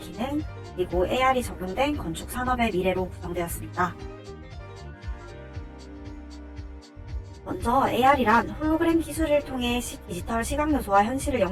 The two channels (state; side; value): identical; both; correlation 1.00